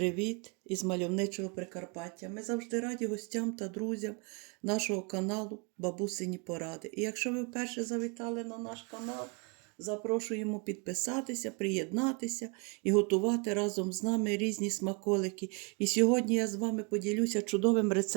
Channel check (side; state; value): left; quieter; 33.7 dB